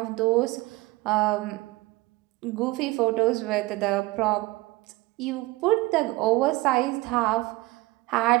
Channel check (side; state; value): left; quieter; 21.2 dB